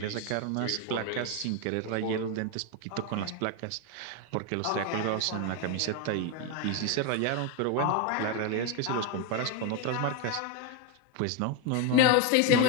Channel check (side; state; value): both; different; correlation 0.02